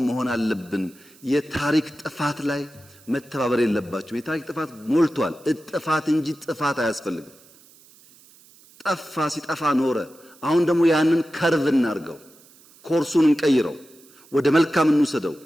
መሆን አለብን። የታሪክ ጥፋት ላይ መተባበር የለባቸው። የታሪክ ጥፋት ሞልቷል። እጥፋት እንጂ ጥፋት አያስፈልግም። ጠፋ ሲጠፋ ኖረ። አሁን ደግሞ ያንን ከርቭ እናርገው፣ ኮርሱን እንቀይረው፣ ወደ መልካም እንውሰደው።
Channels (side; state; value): right; noise; hiss, 26 dB below the sound